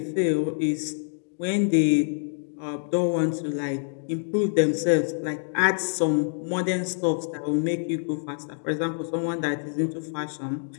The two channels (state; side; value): silent; right; digital silence